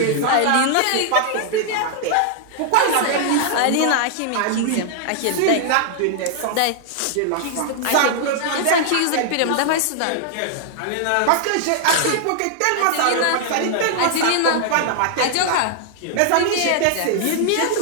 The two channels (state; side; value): different; both; correlation -0.01